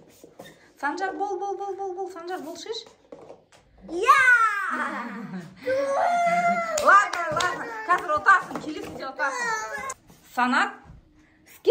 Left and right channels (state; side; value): identical; both; correlation 1.00